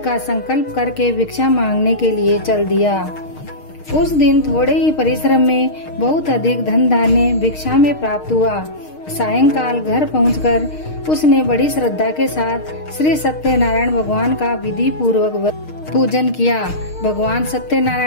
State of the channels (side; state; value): right; late; 6.5 ms